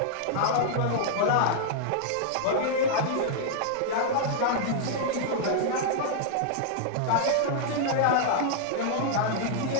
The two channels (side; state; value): both; different; correlation -0.01